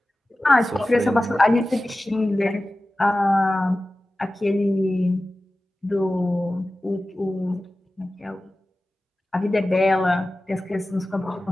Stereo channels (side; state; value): both; normal; correlation 0.96